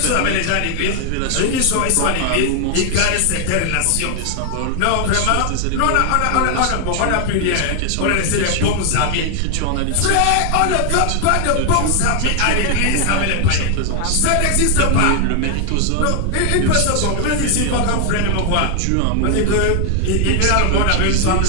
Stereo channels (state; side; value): different; both; correlation 0.00